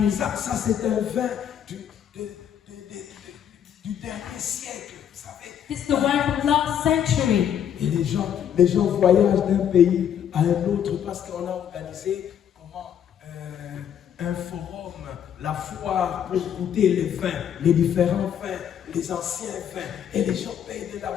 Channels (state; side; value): quieter; right; 9.2 dB